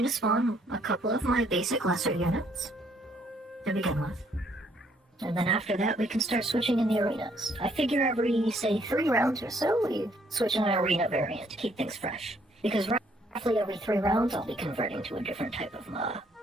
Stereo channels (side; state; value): both; normal; correlation 0.67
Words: to spawn a couple of my basic lesser units to begin with. And then after that, we can start switching in the arenas. I figure every, say, 3 rounds or so, we switch in an arena variant to keep things fresh. Because roughly every 3 rounds, I'll be converting to a different type of